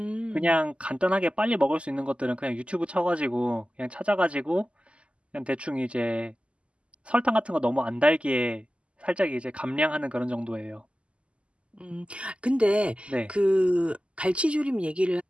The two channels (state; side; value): late; left; 0.056 ms